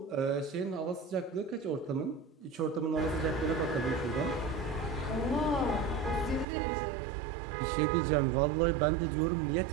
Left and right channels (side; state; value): left; drops out; at 6.5 s